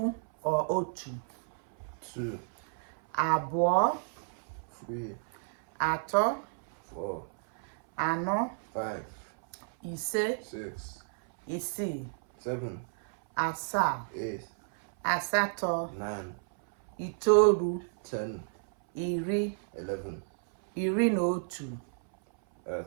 or otu. 2, Abụọ, 3, atọ, 4, anọ, 5, ise, 6, isii, 7, asaa, 8, asatọ, 9, itoolu, 10, iri, 11, iri na otu,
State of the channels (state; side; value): silent; left; 57 dB below the other